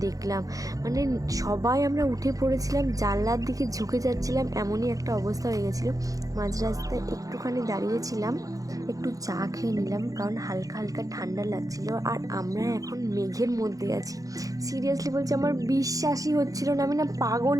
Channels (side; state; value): left; late; 0.17 ms